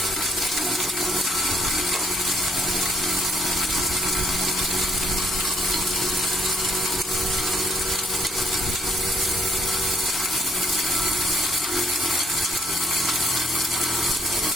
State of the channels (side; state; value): both; normal; correlation 0.67